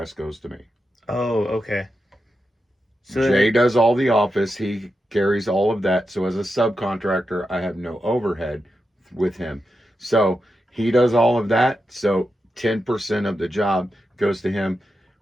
goes to me. Oh, okay. So Jay does all the office. He carries all of that. So as a subcontractor, I have no overhead with him. So he does all of that. So 10% of the job goes to him,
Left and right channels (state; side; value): normal; both; correlation 0.88